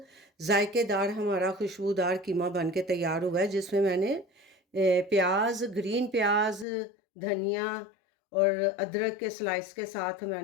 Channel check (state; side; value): drops out; right; at 6.7 s